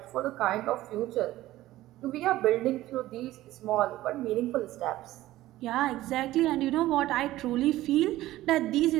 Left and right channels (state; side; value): quieter; left; 15.8 dB